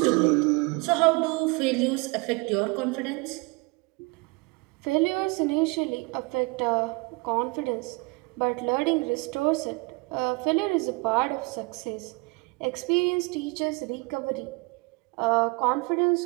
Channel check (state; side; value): quieter; left; 27.2 dB